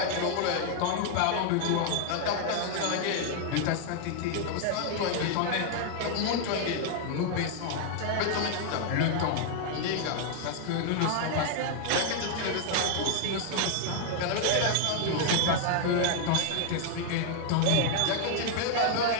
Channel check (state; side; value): different; both; correlation 0.00